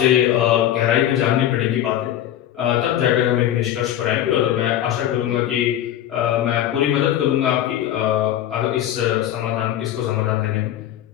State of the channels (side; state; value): right; quieter; 11.7 dB